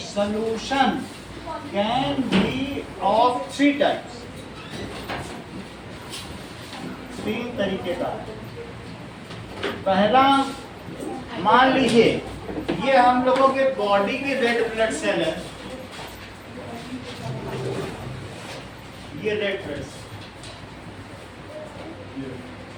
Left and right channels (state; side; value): identical; both; correlation 1.00